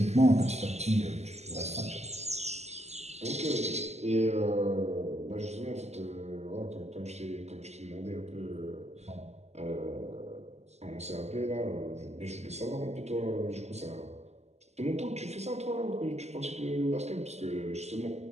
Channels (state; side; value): late; left; 0.32 ms